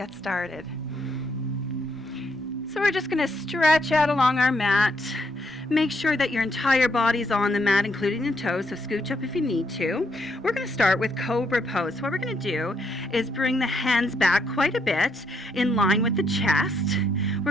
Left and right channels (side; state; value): both; normal; correlation 0.75